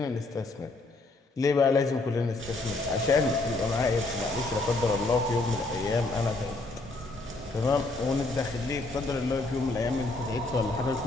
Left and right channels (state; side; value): quieter; right; 3.2 dB